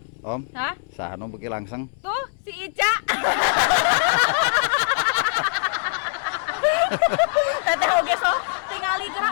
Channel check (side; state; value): right; silent; 63 dB below the other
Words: Om? Hah? Saha nu beuki langsung? Tuh si Ica. Teteh oge sok tingali